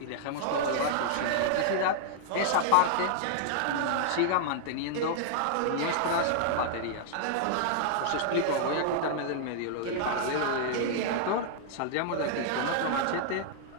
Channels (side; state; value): both; different; correlation -0.01